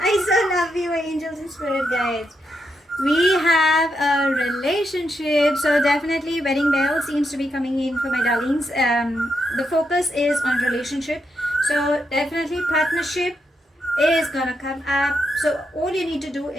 I so love you, angels and spirit guides. We have a relationship, so definitely wedding bell seems to be coming in for my darlings. The focus is on relationship, so definitely partnership is gonna come up. So all you need to do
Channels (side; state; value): both; normal; correlation 0.82